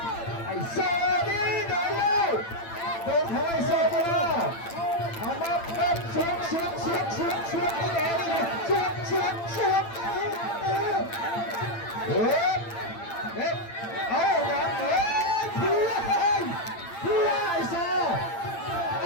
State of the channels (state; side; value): late; right; 8.9 ms